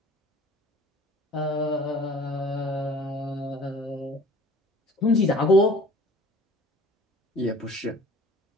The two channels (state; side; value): normal; both; correlation 0.47